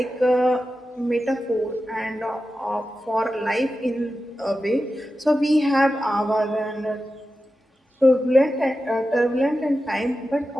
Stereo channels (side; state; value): both; normal; correlation 0.92